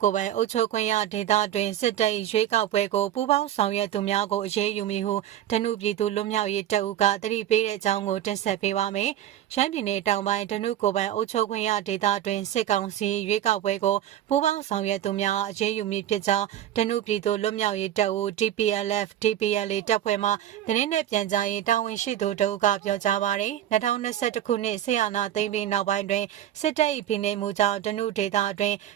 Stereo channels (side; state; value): left; quieter; 11.7 dB